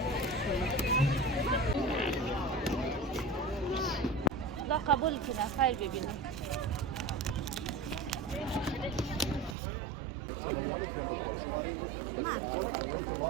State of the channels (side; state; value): left; drops out; at 9.6 s